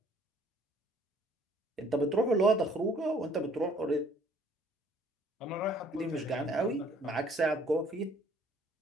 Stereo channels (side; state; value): both; normal; correlation 0.59